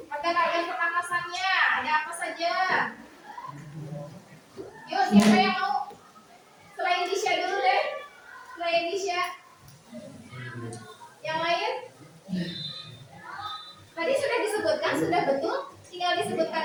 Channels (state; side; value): identical; both; correlation 1.00